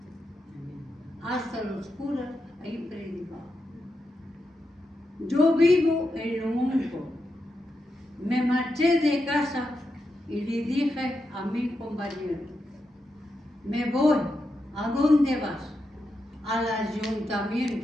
Hasta los curas he predicado. Yo vivo en lo único. Me marché de casa y le dije a mi compañero, me voy. ¿A dónde vas? Al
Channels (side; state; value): both; normal; correlation 0.86